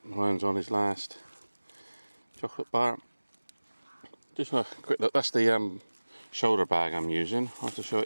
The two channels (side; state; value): both; inverted; correlation -1.00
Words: Ryan's on his last chocolate bar. Just a quick look, that's the shoulder bag I'm using. I'll have to show